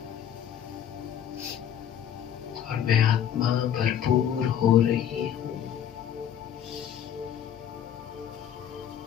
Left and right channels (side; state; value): right; quieter; 9.5 dB